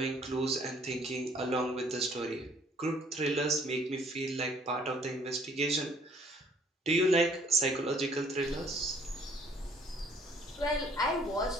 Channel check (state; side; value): normal; both; correlation 0.60